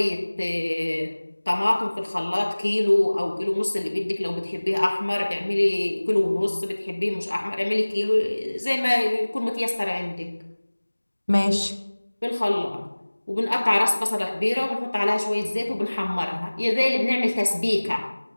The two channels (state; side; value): inverted; both; correlation -1.00